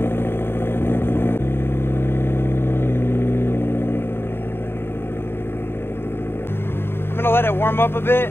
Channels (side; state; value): right; late; 0.11 ms